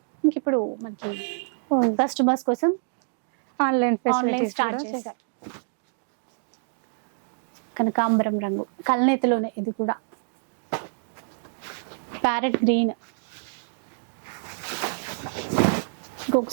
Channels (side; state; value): left; silent; digital silence